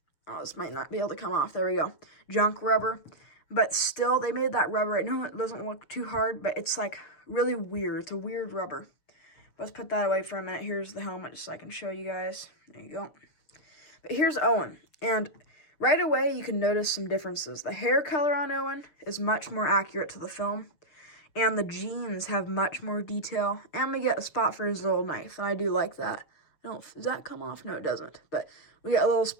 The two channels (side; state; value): right; late; 6.7 ms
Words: oh, this might not be able to come off. There we go. Junk rubber. But still, they made that rubber. I know it doesn't look too hard, but it's like really weird. It's a weird rubber. Let's put that away for a minute. Here's the helmet just so I can show you guys. There you go. But here's Owen. And right away, you can notice some differences. The hair color on Owen is much more accurate to the film. And the jeans have much more detail. And we get a spot for his little knife. And I do like that. Does that come off? No, it doesn't. But we get a little